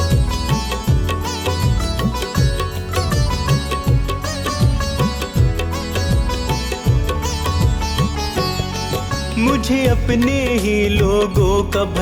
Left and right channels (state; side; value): identical; both; correlation 1.00